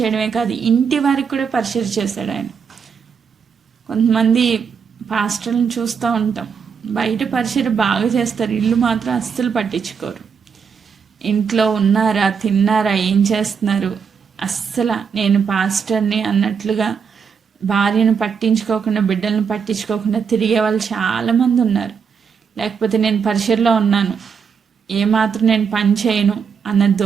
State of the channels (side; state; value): left; quieter; 6.4 dB